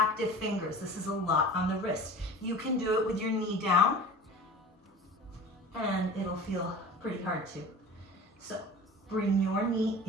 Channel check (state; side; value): normal; both; correlation 0.38